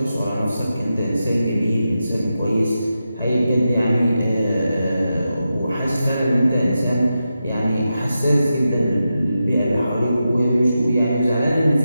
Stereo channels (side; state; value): both; inverted; correlation -0.89